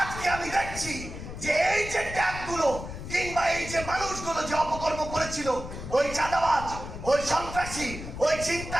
আজকে আমি দেখছি যে এই যে ট্যাগগুলো কিংবা এই যে মানুষগুলো যে অপকর্ম করেছিল, ওই চাঁদাবাজ, ওই সন্ত্রাসী, ওই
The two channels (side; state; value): left; noise; rumble, 10 dB below the sound